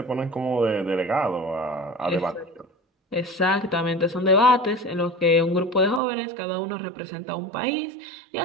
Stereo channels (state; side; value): drops out; left; at 6.0 s